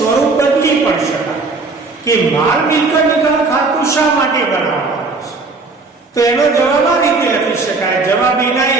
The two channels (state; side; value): quieter; left; 3.8 dB